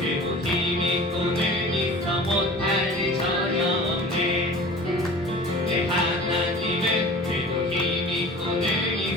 힘이 꿈을 있어 못할 일 전혀 없네 내 하나님은 그리고 힘이 꿈을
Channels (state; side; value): normal; both; correlation 0.40